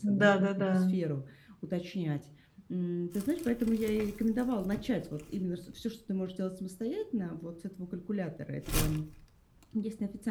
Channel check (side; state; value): both; identical; correlation 1.00